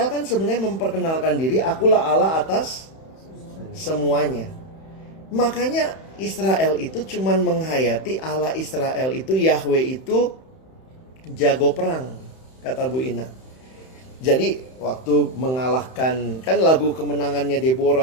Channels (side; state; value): right; late; 31 ms